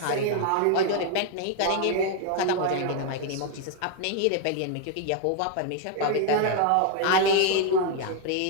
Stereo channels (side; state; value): both; different; correlation 0.00